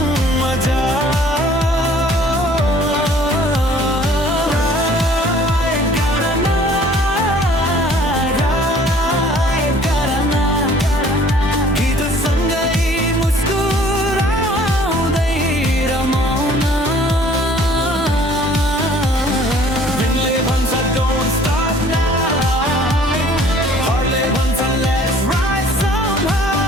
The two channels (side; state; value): both; normal; correlation 0.54